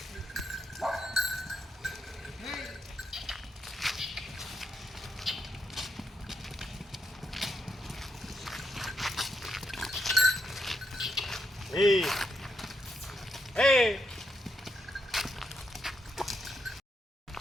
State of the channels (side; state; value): both; normal; correlation 0.81